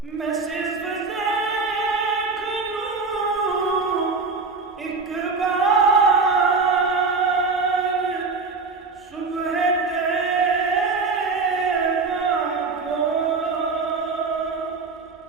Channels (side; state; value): left; quieter; 4.2 dB